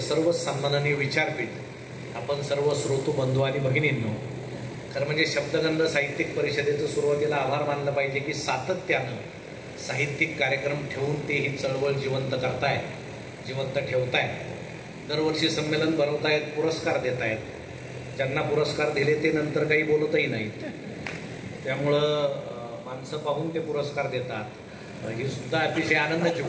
सर्व सन्माननीय विचारपीठ, आपण सर्व श्रोतू बंधू आणि भगिनींनो, खरं म्हणजे शब्दगंध साहित्यिक परिषदेचं सुरुवातीला आभार मानलं पाहिजे की सातत्यानं साहित्यिक कार्यक्रम ठेवून ते ही चळवळ जिवंत करताय, जिवंत ठेवताय, दरवर्षी संमेलन भरवतायत, पुरस्कार देत आहेत. ज्यांना पुरस्कार दिले ते नंतर काही बोलतही नाहीत, त्यामुळं माणसं पाहून ते पुरस्कार देतात. ही सुद्धा अतिशय आनंदाची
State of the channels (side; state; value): both; identical; correlation 1.00